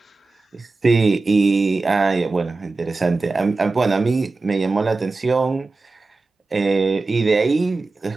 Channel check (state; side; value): quieter; left; 3.6 dB